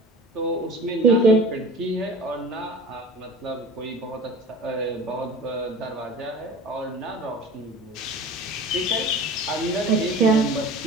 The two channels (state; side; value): normal; both; correlation 0.39